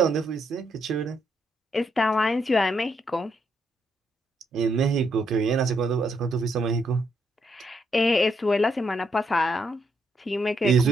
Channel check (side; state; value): both; normal; correlation 0.77